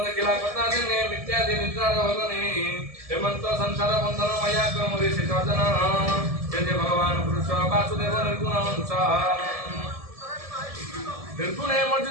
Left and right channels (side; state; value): left; late; 1.7 ms